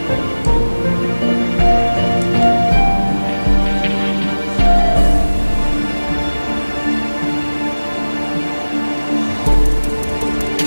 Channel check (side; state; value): both; inverted; correlation -1.00